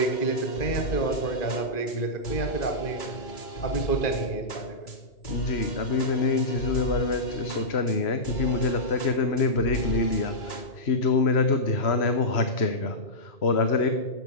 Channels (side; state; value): right; late; 3.0 ms